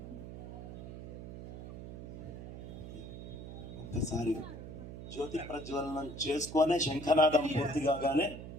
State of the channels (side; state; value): right; noise; hum, 10 dB below the sound